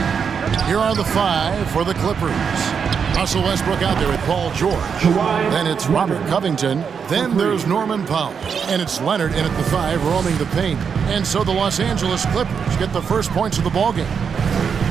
Here are the 5 for the Clippers. Russell Westbrook out there with Paul George. Then it's Robert Covington. Then there's Norman Powell. And it's Leonard in at the 5 roaming the paint. And so the Los Angeles Clippers get the first points of the ballgame.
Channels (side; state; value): left; quieter; 6.6 dB